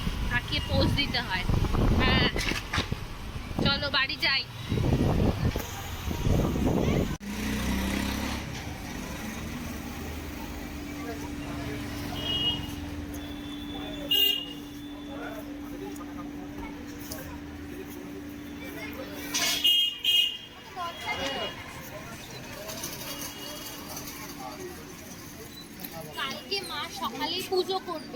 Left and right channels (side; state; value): both; identical; correlation 1.00